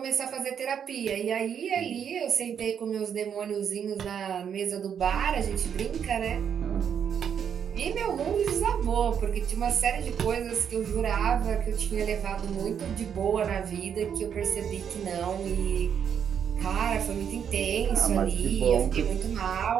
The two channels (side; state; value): left; quieter; 8.0 dB